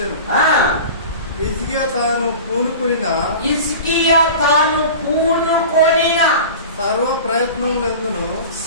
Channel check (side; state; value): both; inverted; correlation -0.35